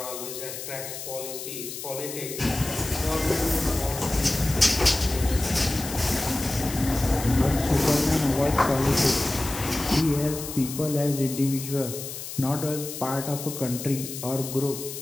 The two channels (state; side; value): noise; left; hiss, 9 dB below the sound